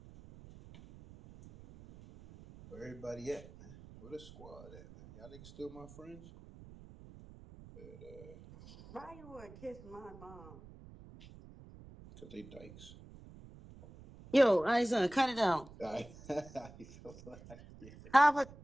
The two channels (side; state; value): right; noise; rumble, 18 dB below the sound